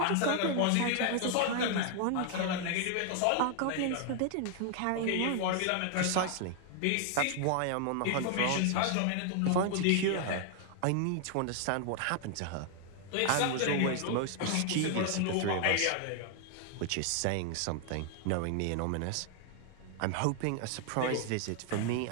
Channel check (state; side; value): different; both; correlation 0.00